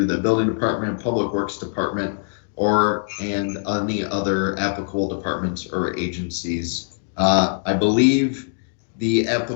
the Building Department, Public Works Department, and any other applicable departments or agencies. I believe the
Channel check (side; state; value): right; silent; digital silence